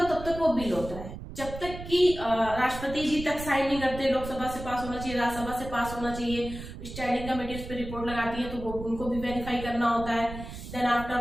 है तब तक वो बिल होता है, जब तक कि राष्ट्रपति जी तक साइन नहीं करते, लोकसभा से पास होना चाहिए, राज्यसभा से पास होना चाहिए, स्टैंडिंग कमेटी उस पर रिपोर्ट लगाती है तो वो उनको भी वेरीफाई करना होता है, देन आफ्टर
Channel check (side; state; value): right; noise; rumble, 10 dB below the sound